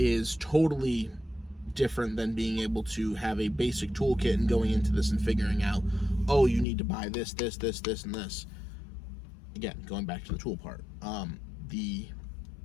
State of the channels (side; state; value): right; drops out; at 6.7 s